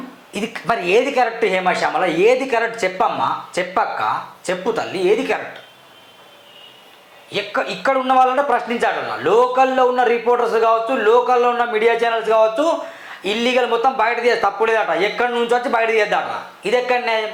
ఇది మరి ఏది కరెక్ట్ హేమా శ్యామల? ఏది కరెక్ట్ చెప్పమ్మా, చెప్పక్క, చెప్పు తల్లి, ఏది కరెక్ట్? ఇక్కడ ఉన్న వాళ్ళంటే ప్రశ్నించాలన్న. లోకల్లో ఉన్న రిపోర్టర్స్ కావచ్చు, లోకల్లో ఉన్న మీడియా ఛానల్స్ కావచ్చు, ఇల్లీగల్ మొత్తం బయట తీయాలి, తప్పులేదట. ఎక్కడి నుంచి వచ్చి బయట తీయద్దట. ఇది ఎక్కడ న్యాయం?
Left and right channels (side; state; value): both; identical; correlation 1.00